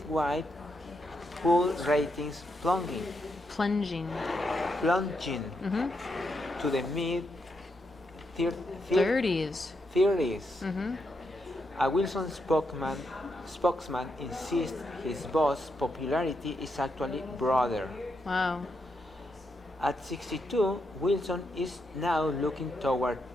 pool ratings Plunging. plunging to the mid 30s. 30s. A Wilson spokesman insists his boss' popularity is actually broader. Wow. At 62, Wilson is now looking toward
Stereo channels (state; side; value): normal; both; correlation 0.82